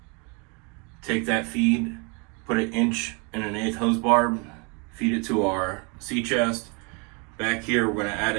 take that feed, put an 1 1/8 hose barb, feed it to our sea chest. Back here, we're going to add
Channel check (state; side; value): quieter; left; 32.7 dB